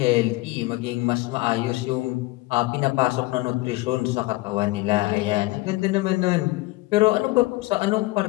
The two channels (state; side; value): quieter; right; 20.8 dB